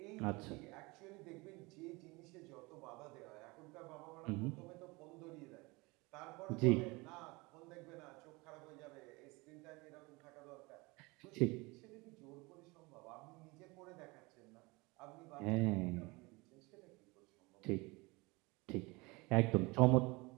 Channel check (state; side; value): quieter; left; 24.8 dB